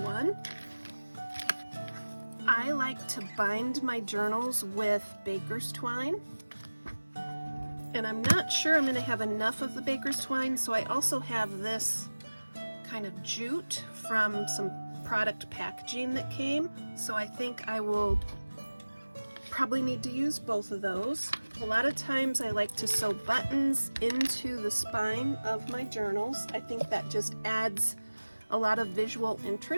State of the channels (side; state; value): both; inverted; correlation -1.00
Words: I like to bind my journals with baker's twine, and I'm not sure I'm going to have enough of the baker's twine, so I also have this kind of jute from some product packaging that came, so I think I will probably need to use both of those. A lot of times I like to sew buttons into the spine of my journals. I think that just adds a lot of visual